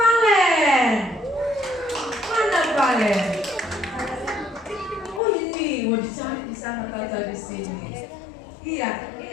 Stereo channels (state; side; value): drops out; right; at 5.2 s